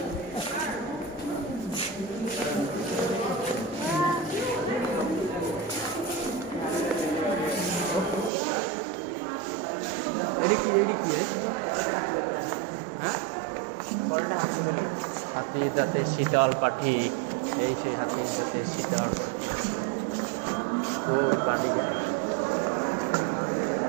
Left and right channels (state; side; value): drops out; left; at 8.3 s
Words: এডি কি হ্যাঁ হাতির দাঁতে শীতল পাখি এই সেই হাতির দাঁতে শীতল পাখি ওই পানি